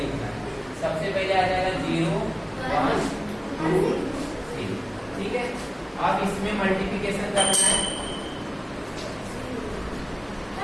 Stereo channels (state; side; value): identical; both; correlation 1.00